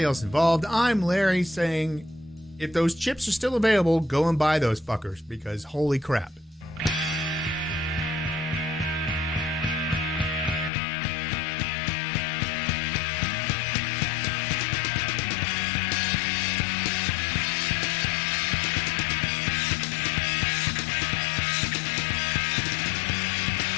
else involved, I'm Larry saying, if those chips are still available, go and buy those fuckers, because holy crap.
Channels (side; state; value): right; drops out; at 10.7 s